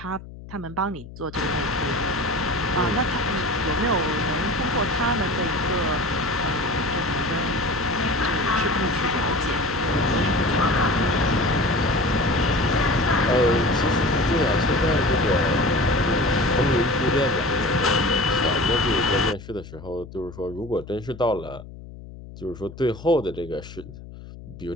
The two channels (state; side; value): noise; left; hum, 15 dB below the sound